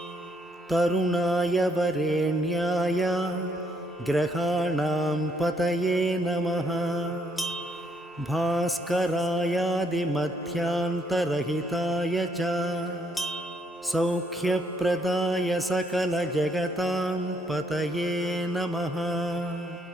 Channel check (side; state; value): both; normal; correlation 0.71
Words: तरुणाय वरेण्याय ग्रहाणां पतये नमः भास्करायादिमध्यान्तरहिताय च सौख्यप्रदाय सकलजगतां पतये नमः